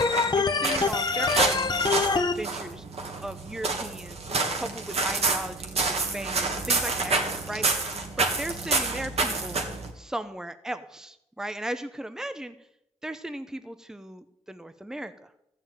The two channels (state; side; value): normal; both; correlation 0.33